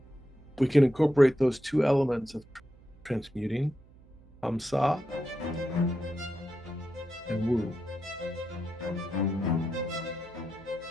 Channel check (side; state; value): right; noise; hum, 25 dB below the sound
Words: we can incorporate those two elements of transmuting, Hamsa and Woo.